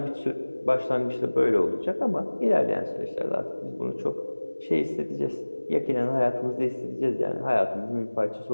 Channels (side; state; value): both; inverted; correlation -1.00